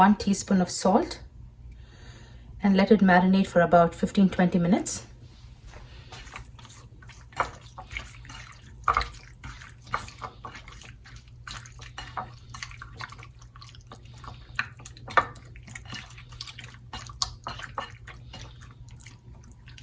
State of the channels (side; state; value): both; identical; correlation 1.00